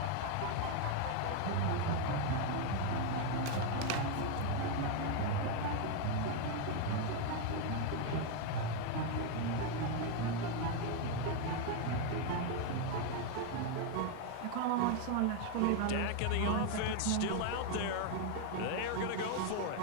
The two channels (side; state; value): both; different; correlation 0.01